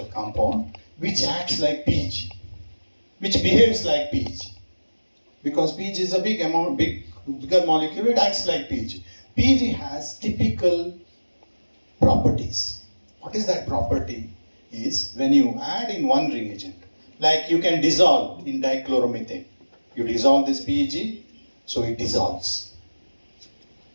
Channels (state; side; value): inverted; both; correlation -1.00